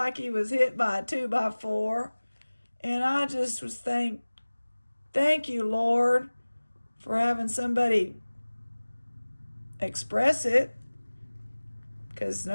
he was hit by a 2x4. And I just was thank you, Lord, for having somebody express it. Because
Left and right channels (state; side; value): inverted; both; correlation -1.00